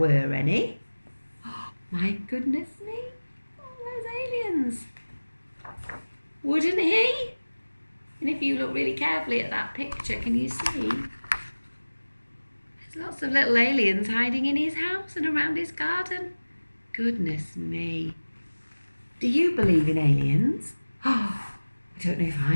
any. Oh, my goodness me. Oh, those aliens. Wouldn't he? And if you look really carefully at that picture, can you see? There's lots of little aliens hiding in his house and around his garden. Goodness me. Do you believe in aliens? Oh, I don't know if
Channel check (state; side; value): inverted; both; correlation -1.00